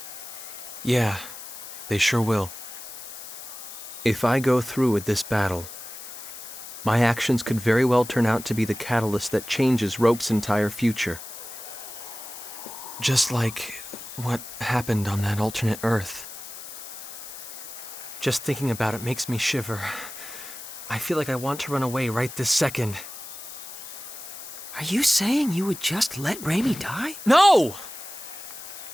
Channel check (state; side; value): noise; left; hiss, 12 dB below the sound